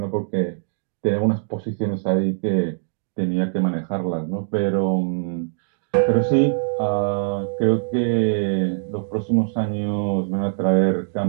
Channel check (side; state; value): left; silent; digital silence